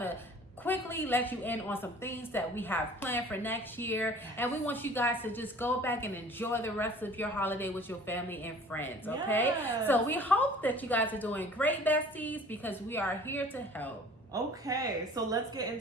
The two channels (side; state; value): both; normal; correlation 0.48